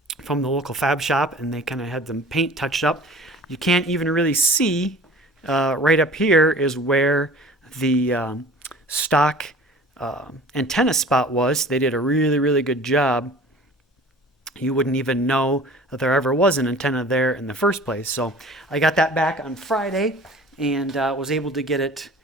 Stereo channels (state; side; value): normal; both; correlation 0.45